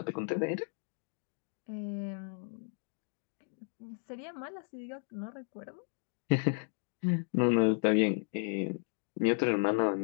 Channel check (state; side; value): silent; right; 55 dB below the other